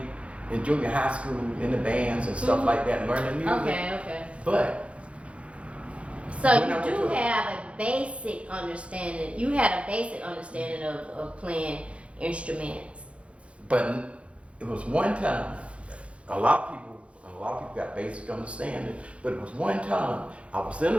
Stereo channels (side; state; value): left; late; 0.061 ms